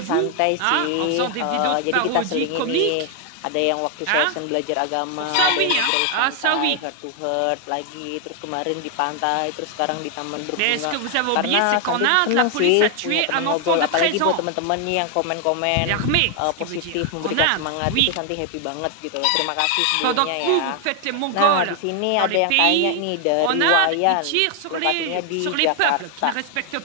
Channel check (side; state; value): both; different; correlation 0.00